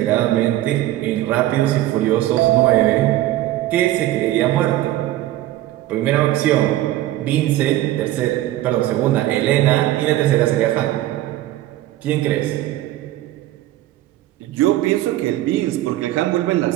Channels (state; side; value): quieter; left; 14.9 dB